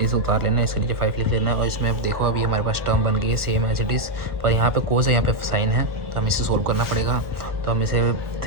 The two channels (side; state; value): left; late; 1.5 ms